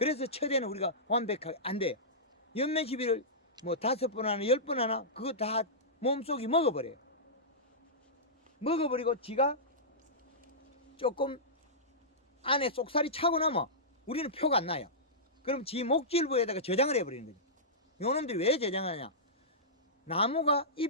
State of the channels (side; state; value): both; normal; correlation -0.16